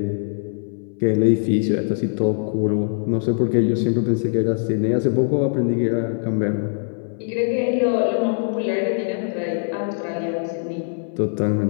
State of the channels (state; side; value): silent; right; 61 dB below the other